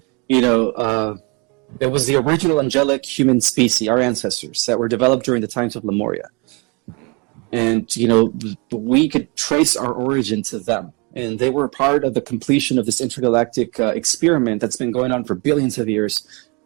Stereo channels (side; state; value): left; quieter; 29.7 dB